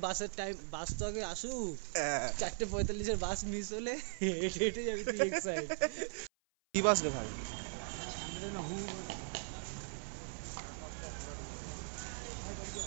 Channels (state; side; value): silent; left; 52 dB below the other